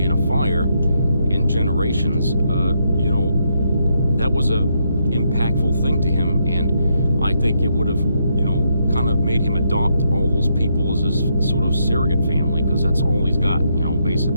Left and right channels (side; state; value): both; inverted; correlation -0.78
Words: in a fire in Generations, that was a impactful thing to him, and I think it would have, kind of made him adopt all those people as his sort of surrogate family, because that's all he's got,